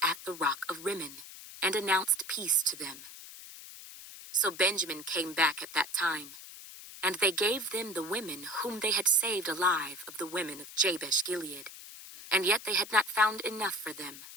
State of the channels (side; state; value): left; noise; hiss, 14 dB below the sound